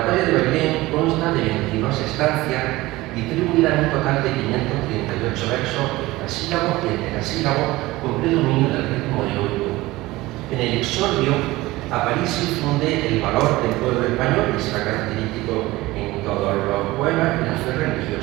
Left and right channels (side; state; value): left; quieter; 19.1 dB